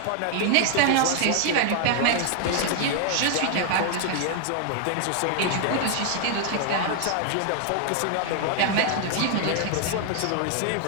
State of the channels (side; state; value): both; different; correlation 0.00